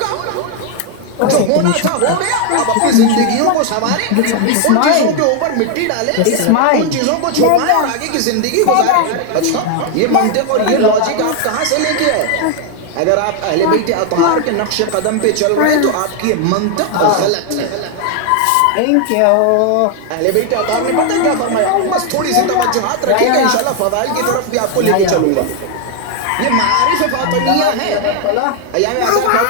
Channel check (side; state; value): both; different; correlation 0.00